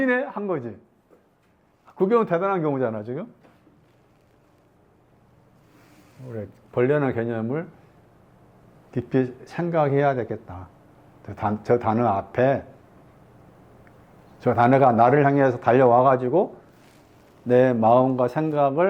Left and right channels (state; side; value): identical; both; correlation 1.00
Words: 한 거지. 그 경우는 대단한 경우잖아 지금. 우리 벌레라는 개념을 깊이 생각해야 되겠다. 저 단어 앞에 저 단어가 나를 향해서 달려와가지고 내 마음과